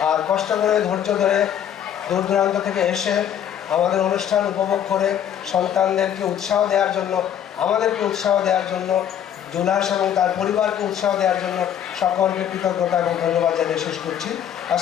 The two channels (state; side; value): quieter; right; 9.7 dB